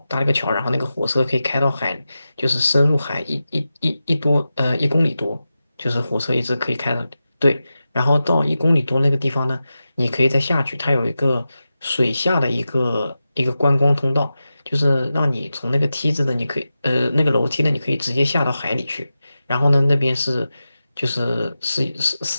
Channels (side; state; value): both; inverted; correlation -0.92